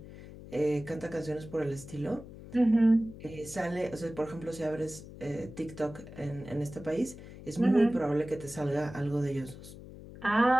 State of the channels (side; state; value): left; noise; hum, 15 dB below the sound